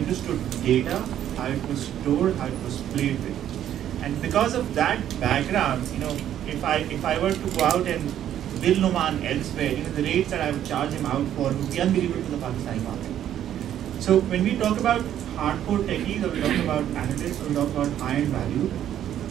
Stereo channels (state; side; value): quieter; left; 10.9 dB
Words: data, how it was stored, how it was played with. And because of that background, if I were to go out and bill Numan elsewhere, the rates that I would charge him out for would be unbelievable to the Pakistani market. So when we talk about hardcore techies, or we talk about analysts, or we talk about high-end value,